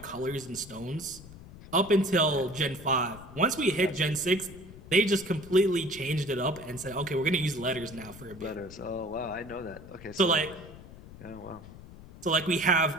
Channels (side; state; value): left; noise; rumble, 17 dB below the sound